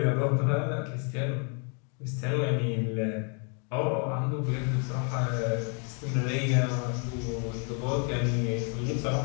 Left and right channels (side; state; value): right; quieter; 39.1 dB